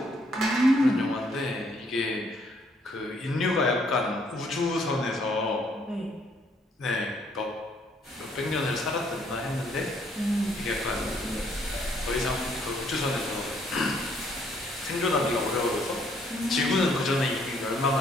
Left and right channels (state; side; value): normal; both; correlation 0.67